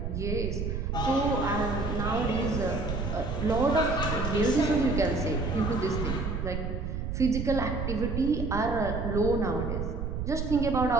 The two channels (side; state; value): right; noise; rumble, 3 dB below the sound